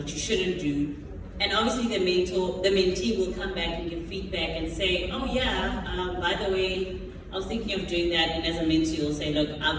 you shouldn't do. And obviously the mentee will come back and give feedback and say, oh yeah, by the way, I was thinking of doing that. And as a mentee, you'll say, look,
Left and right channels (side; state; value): both; identical; correlation 1.00